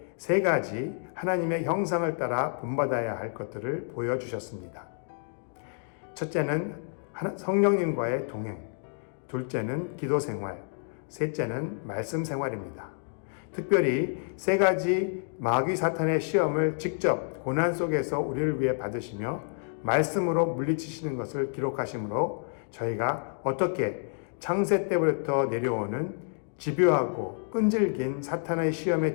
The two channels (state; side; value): silent; right; 59 dB below the other